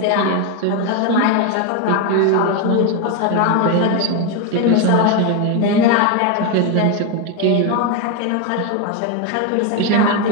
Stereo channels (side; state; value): both; different; correlation 0.02